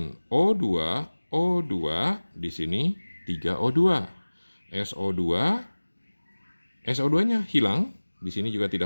O2 di sini 3O2. SO2-nya hilang, di sini juga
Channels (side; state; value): both; inverted; correlation -1.00